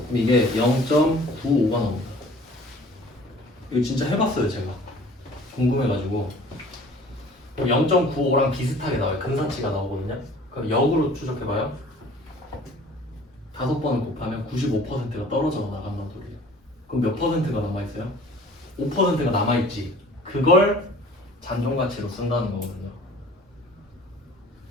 이게 0.95가 나옵니다. 이거 진짜 해봤어요 제가. 궁금해가지고 0.95랑 비슷하게 나와요. 근사치가 나오거든요. 그럼 역으로 추적해봐요. 5번을 곱하면 95%가 떨어져 나간다는 소리예요. 그럼 몇 퍼센트가 남아있어요? 5%가 남아있지. 그걸 잔존가치로 쓴다는 거거든요.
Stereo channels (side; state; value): both; normal; correlation 0.49